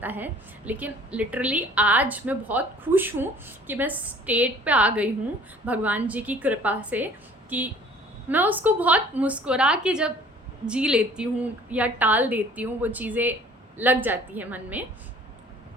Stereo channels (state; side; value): normal; both; correlation 0.52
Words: है। लेकिन लिटरली आज मैं बहुत खुश हूँ कि मैं स्टेट पे आ गई हूँ भगवान जी की कृपा से, कि मैं उसको बहुत मुस्कुरा के जब जी लेती हूँ या टाल देती हूँ, वो चीज़ें लग जाती है मन में